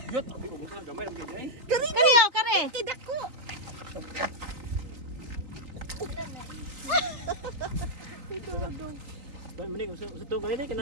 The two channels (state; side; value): late; left; 3.7 ms